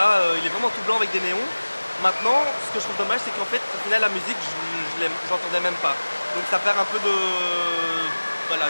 il est vraiment tout blanc avec des néons. Maintenant, ce que je trouve dommage, c'est qu'en fait, au final, la musique, j'entendais même pas. Donc ça perd un peu de, voilà,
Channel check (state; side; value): inverted; both; correlation -1.00